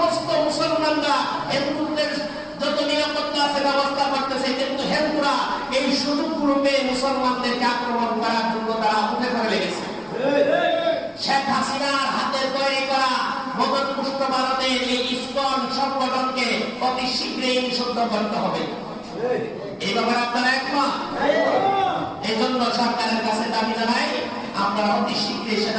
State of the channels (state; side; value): identical; both; correlation 1.00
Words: মুসলমানরা হিন্দুদের যত নিরাপত্তা আছে ব্যবস্থা করতেছে, কিন্তু হিন্দুরা এই সুযোগগুলো পেয়ে মুসলমানদেরকে আক্রমণ করার জন্য তারা উঠে পড়ে লেগেছে। শেখ হাসিনার হাতে তৈরি করা মদতপুষ্ট ভারতের এই ইসকন সংগঠনকে অতি শীঘ্রই নিষিদ্ধ করতে হবে। এই ব্যাপারে আপনারা একমত? এই জন্য সরকারের কাছে দাবি জানাই, আপনারা অতি শীঘ্রই